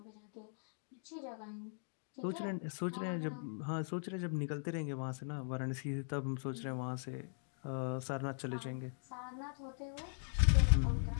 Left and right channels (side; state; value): right; silent; digital silence